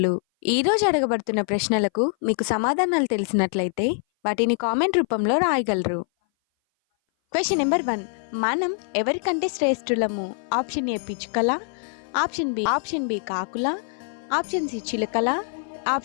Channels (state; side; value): silent; right; 58 dB below the other